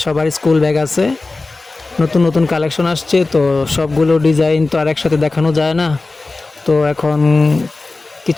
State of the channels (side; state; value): right; quieter; 3.4 dB